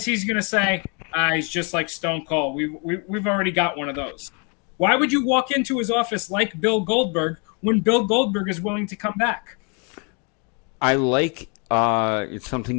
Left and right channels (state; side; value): quieter; right; 34.8 dB